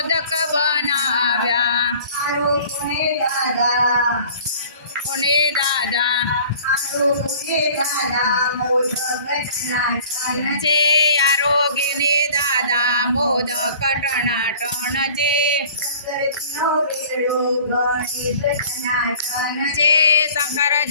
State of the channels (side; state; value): both; inverted; correlation -0.47